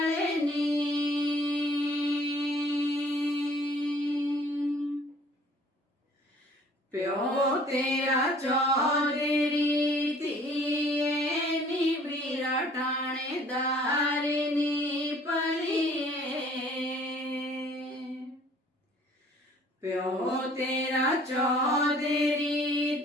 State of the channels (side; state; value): both; normal; correlation 0.55